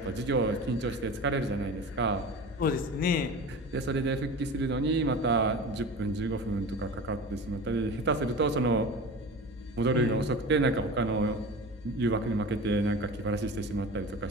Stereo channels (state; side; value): normal; both; correlation 0.33